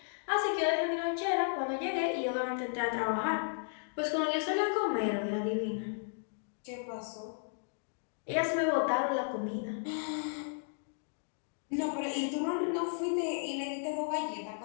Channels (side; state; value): right; silent; digital silence